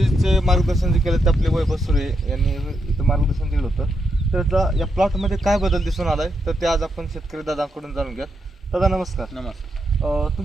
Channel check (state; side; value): normal; both; correlation 0.82